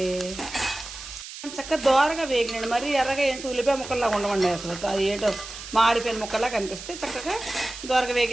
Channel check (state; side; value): noise; right; hiss, 12 dB below the sound